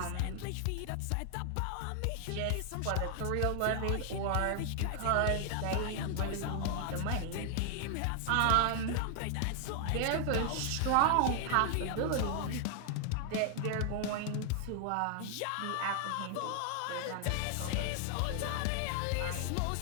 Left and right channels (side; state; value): both; different; correlation 0.00